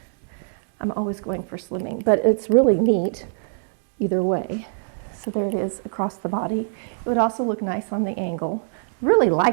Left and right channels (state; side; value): silent; left; 63 dB below the other